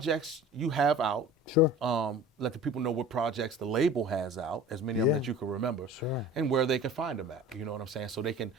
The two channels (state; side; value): normal; both; correlation 0.41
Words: you have out. Sure. Let the people know what projects the label has out, as many of them that you can remember, and where they can find them at. You know what I'm saying?